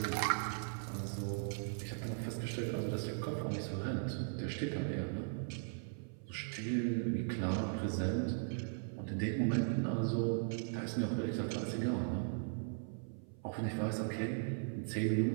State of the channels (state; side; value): silent; left; 52 dB below the other